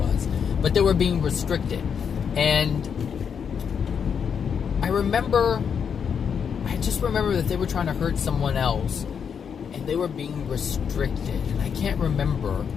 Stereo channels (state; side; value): quieter; right; 7.1 dB